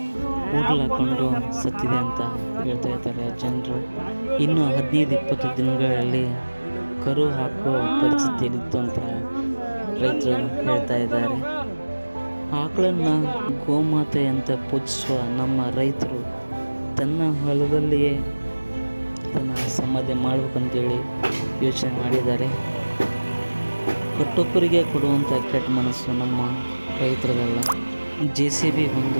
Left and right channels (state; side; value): inverted; both; correlation -1.00